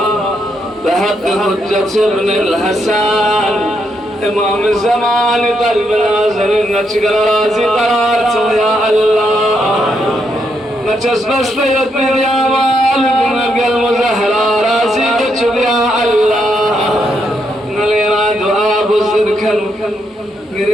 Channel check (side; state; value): both; normal; correlation 0.78